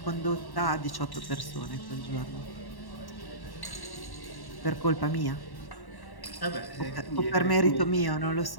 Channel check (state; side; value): late; right; 1.1 ms